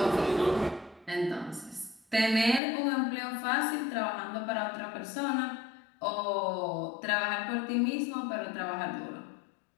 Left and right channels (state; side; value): drops out; right; at 2.6 s